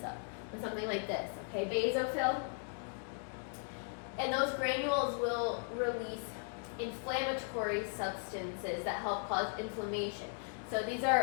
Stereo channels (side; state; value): right; silent; 53 dB below the other